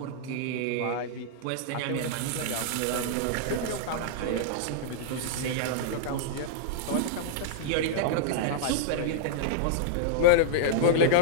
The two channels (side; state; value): both; different; correlation -0.02